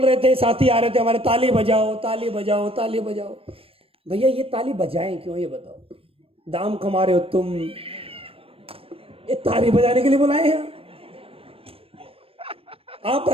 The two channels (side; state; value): left; late; 0.28 ms